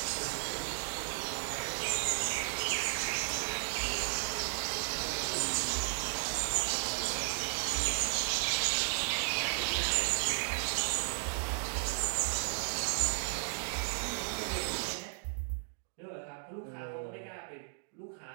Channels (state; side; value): silent; left; digital silence